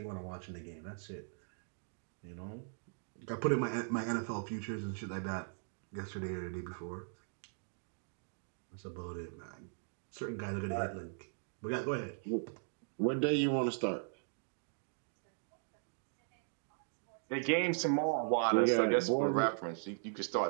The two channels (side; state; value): left; silent; digital silence